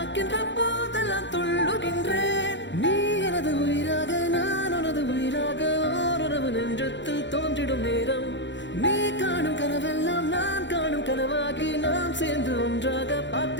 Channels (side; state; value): right; late; 0.53 ms